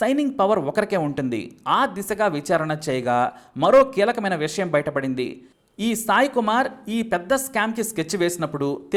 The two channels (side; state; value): both; identical; correlation 1.00